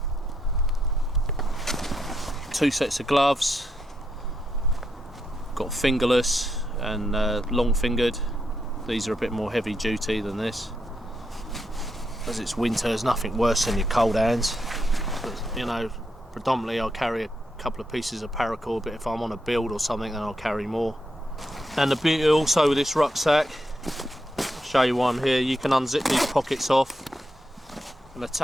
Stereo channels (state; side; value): normal; both; correlation 0.82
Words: 2 sets of gloves, got fingerless and long fingered. These are a bit more heavy duty than this. As it's winter, there's nothing worse than your cold hands. But, you know, predominantly I'll carry a couple of pieces of paracord, but if I'm on a build or something, then I'll carry more. And the beauty also with this rucksack, I'll show you one here. You can unzip these pockets off and